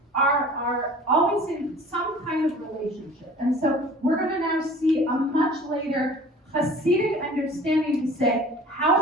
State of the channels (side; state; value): both; normal; correlation 0.45